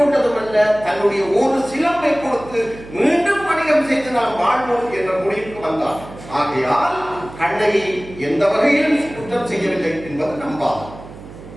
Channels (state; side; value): noise; right; hum, 16 dB below the sound